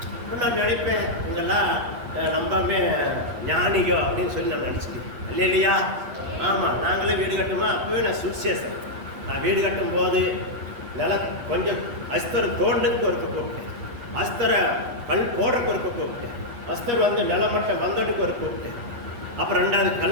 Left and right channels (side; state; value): left; late; 8.4 ms